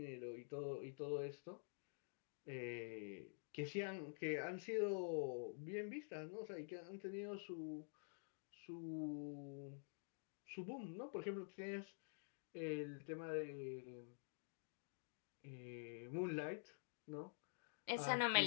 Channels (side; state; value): right; silent; digital silence